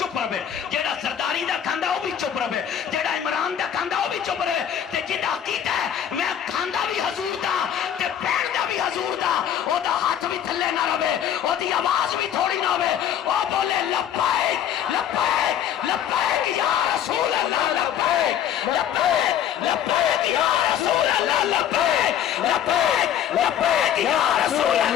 رہے جیڑا سرداری دا کھاندہ وہ بھی چپ رہے جیڑا عمران دا کھاندہ وہ بھی چپ رہے تے جنہ عقیدہ ہے میں کھاندہ بھی حضور دا تے پین دا بھی حضور دا او دا ہاتھ بھی تھلے نہ رہے او دی آواز بھی تھوڑی نہ ہوئے او بولے لبیک لبیک لبیک یا رسول اللہ لبیک لبیک لبیک یا رسول اللہ لبیک لبیک لبیک یا رسول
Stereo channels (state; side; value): quieter; right; 9.8 dB